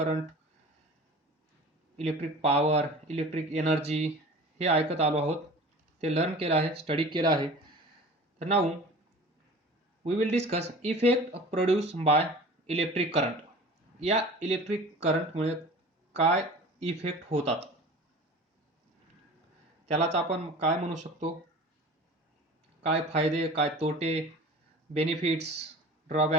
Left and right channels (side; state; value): both; normal; correlation 0.40